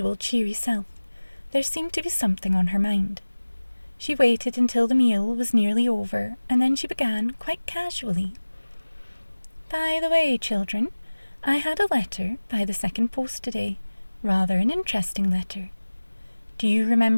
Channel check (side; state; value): both; inverted; correlation -1.00